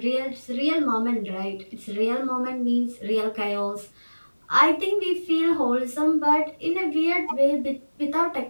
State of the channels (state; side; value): inverted; both; correlation -1.00